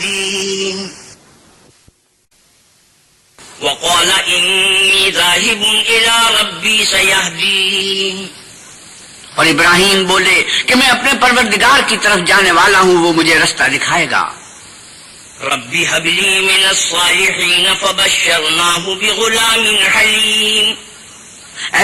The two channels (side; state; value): both; identical; correlation 1.00